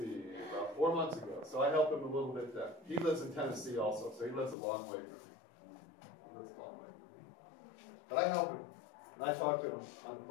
about 4 months ago. So I helped him a little bit then. He lives in Tennessee also, so he lives a long way from me. He lives a long way from me. But I help him, and I talk to him on the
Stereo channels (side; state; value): right; drops out; at 4.5 s